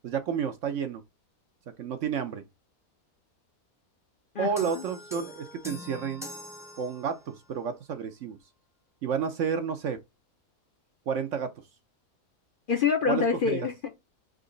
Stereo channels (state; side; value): normal; both; correlation 0.06